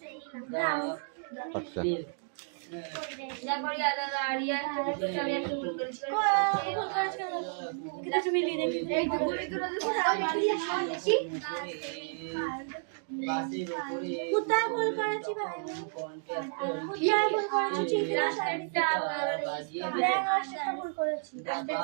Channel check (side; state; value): left; silent; digital silence